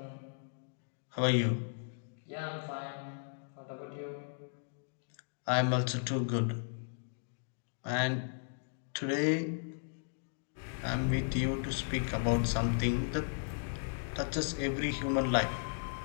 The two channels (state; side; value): silent; right; digital silence